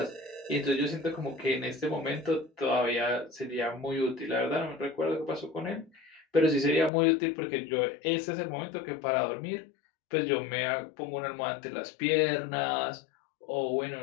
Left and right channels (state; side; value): drops out; right; at 6.9 s